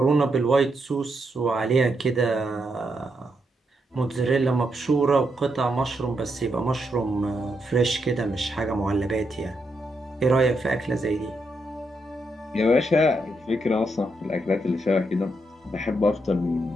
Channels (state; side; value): normal; both; correlation 0.81